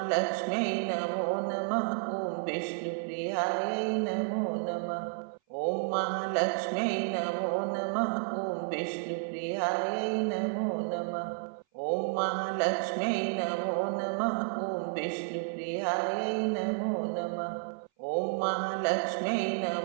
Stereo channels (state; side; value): silent; left; 57 dB below the other